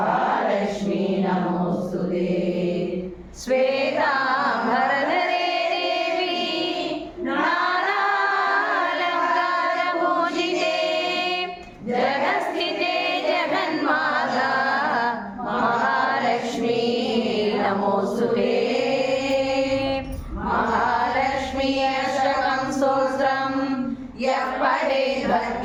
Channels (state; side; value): identical; both; correlation 1.00